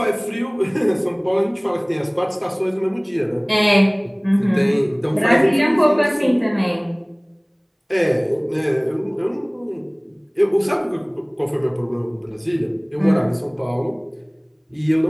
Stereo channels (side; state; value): both; identical; correlation 1.00